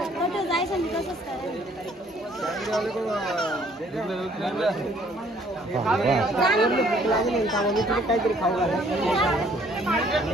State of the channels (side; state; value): both; normal; correlation 0.61